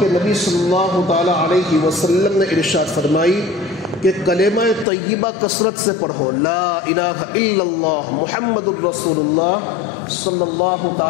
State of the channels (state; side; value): drops out; right; at 4.9 s